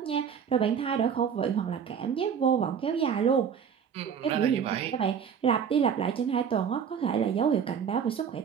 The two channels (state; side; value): quieter; left; 7.5 dB